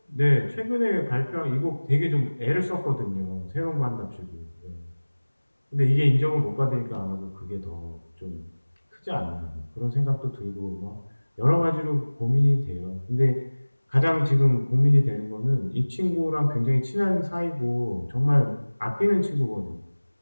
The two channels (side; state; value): both; inverted; correlation -1.00